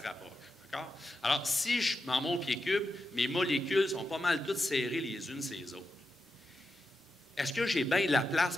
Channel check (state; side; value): normal; both; correlation 0.88